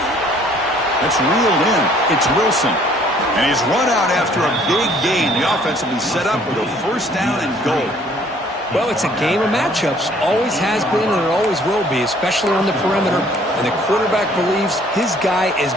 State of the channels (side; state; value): both; normal; correlation 0.59